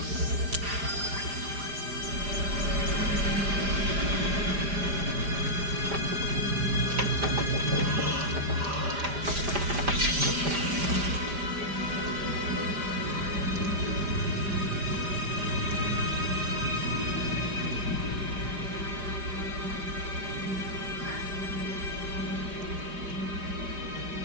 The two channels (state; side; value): late; left; 4.9 ms